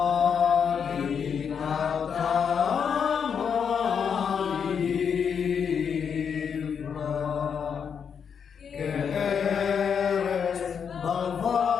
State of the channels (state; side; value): quieter; right; 7.0 dB